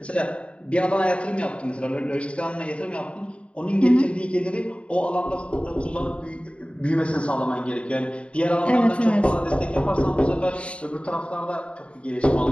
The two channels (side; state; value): right; late; 0.060 ms